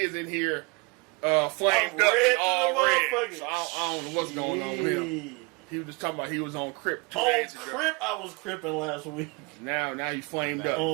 in here flamed I'm up red all to the red. motherfucker. So I don't know what's going on with him. He was just talking about he was on Crip 2 On days ago. Crip, I was cripping last week. Now he flamed up.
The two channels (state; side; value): quieter; left; 29.6 dB